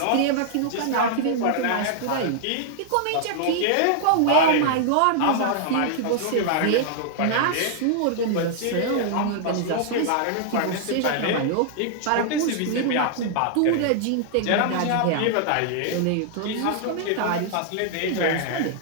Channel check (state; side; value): different; both; correlation -0.01